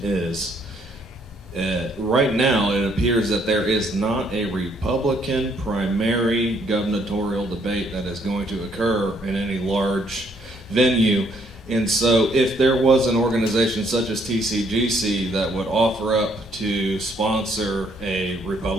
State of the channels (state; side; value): normal; both; correlation 0.68